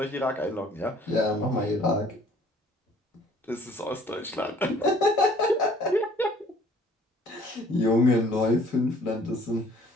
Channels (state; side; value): normal; both; correlation 0.56